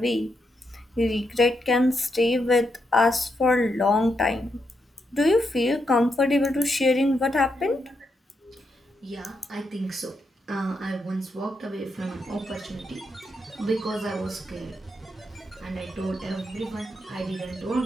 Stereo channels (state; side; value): normal; both; correlation 0.82